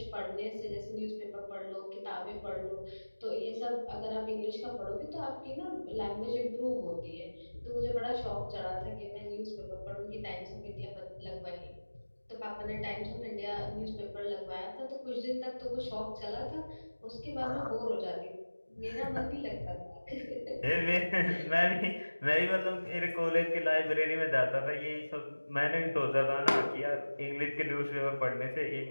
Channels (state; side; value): inverted; both; correlation -1.00